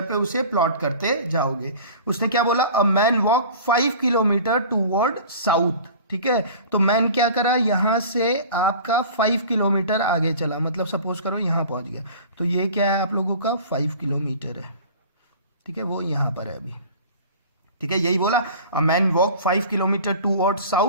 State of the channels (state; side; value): inverted; both; correlation -0.42